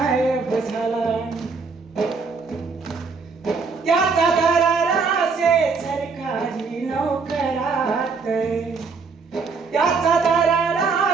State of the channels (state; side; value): quieter; left; 4.8 dB